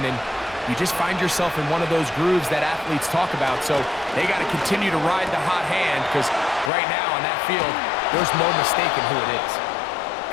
and you just find yourself in one of those grooves that athletes talk about. So they got to continue to ride the hot hand, because right now on that field, there's no mistaking who it is.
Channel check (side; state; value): right; drops out; at 6.7 s